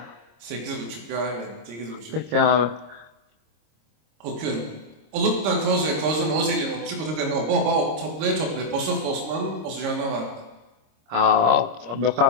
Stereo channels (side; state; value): left; late; 26 ms